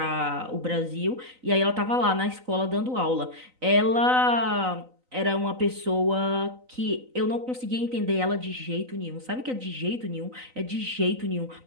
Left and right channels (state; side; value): late; left; 3.9 ms